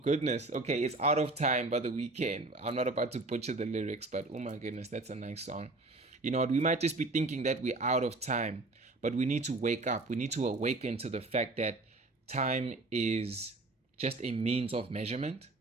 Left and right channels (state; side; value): quieter; left; 3.1 dB